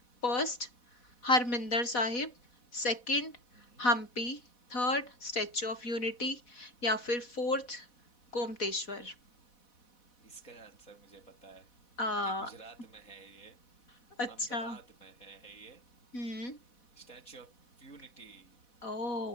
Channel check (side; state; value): right; late; 4.1 ms